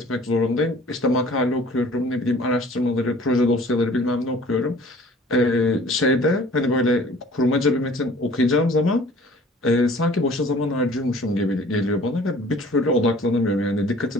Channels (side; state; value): both; normal; correlation 0.50